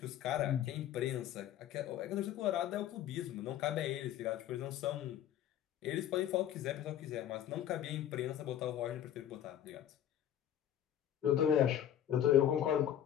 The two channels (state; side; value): quieter; right; 10.9 dB